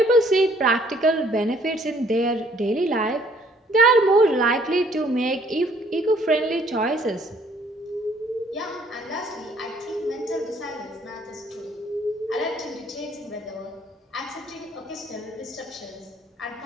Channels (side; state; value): both; normal; correlation 0.62